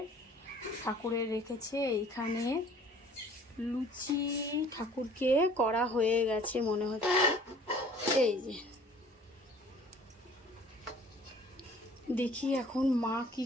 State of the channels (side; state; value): both; normal; correlation 0.52